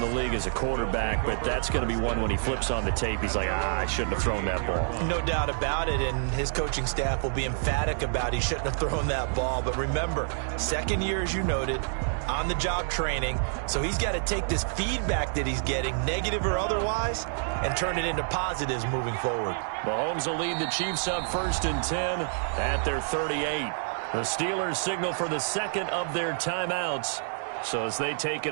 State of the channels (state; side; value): silent; left; digital silence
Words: league as a quarterback, but that's going to be one when he flips on the tape. He's like, I shouldn't have thrown that ball. No doubt about it, and his coaching staff will be emphatic about he shouldn't have thrown that ball. But remember, second year, as you noted, on-the-job training, so he's got to take this feedback that he's getting, negative or otherwise, and turn it into positives moving forward. Mahomes will lead the Chiefs up 1st and 10 at their 38. The Steelers signal for the second of their timeouts. So as they take